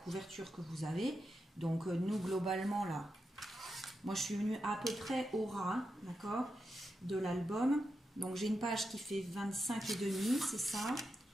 que vous avez. Donc, nous, globalement, là, moi, je suis venue à peu près au ras, hein, d'accord, de l'album. Donc, j'ai une page qui fait 25,5, c'est ça,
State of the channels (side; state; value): both; normal; correlation 0.87